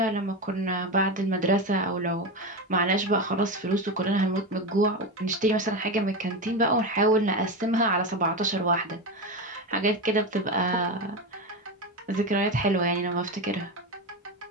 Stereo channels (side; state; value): both; normal; correlation 0.18